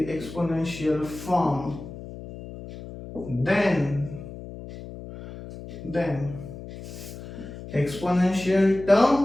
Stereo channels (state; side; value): noise; left; hum, 13 dB below the sound